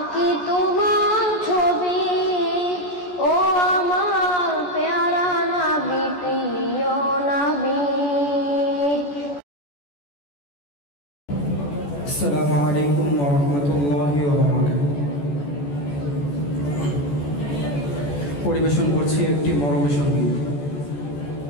তোমার ছবি ও আমার প্যারা নবী প্রিয় নবী। আসসালামু আলাইকুম ওয়া রাহমাতুল্লাহি ওয়া বারাকাতুহু। পরিবেশন করছি একটি মরমী সঙ্গীত।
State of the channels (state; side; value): late; right; 14 ms